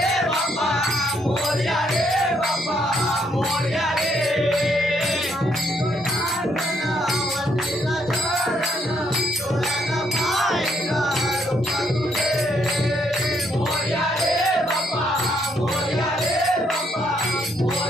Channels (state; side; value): normal; both; correlation 0.72